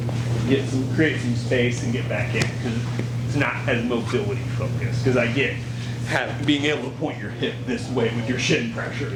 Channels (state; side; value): identical; both; correlation 1.00